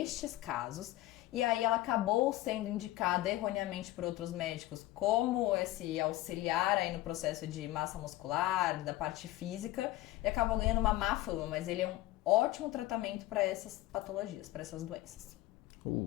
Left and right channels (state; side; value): quieter; right; 16.7 dB